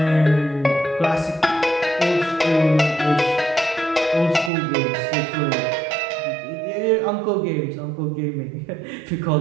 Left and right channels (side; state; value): left; drops out; at 4.5 s